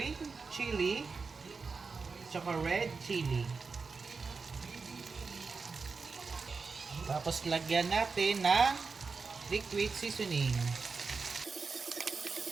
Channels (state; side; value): quieter; left; 4.7 dB